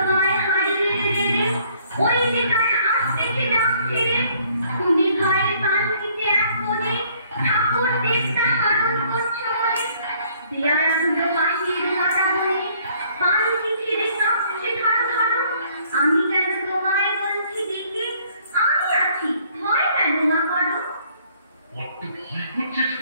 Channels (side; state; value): both; inverted; correlation -0.62